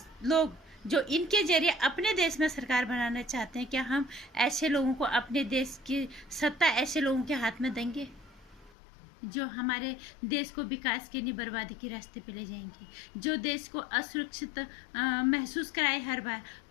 जो इनके जरिए अपने देश में सरकार बनाना चाहते हैं, क्या हम ऐसे लोगों को, अपने देश की सत्ता ऐसे लोगों के हाथ में देंगे जो हमारे देश को विकास के नहीं बर्बादी के रास्ते पे ले जाएंगे, जो देश को असुरक्षित महसूस कराए। हर बार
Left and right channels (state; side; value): drops out; right; at 8.8 s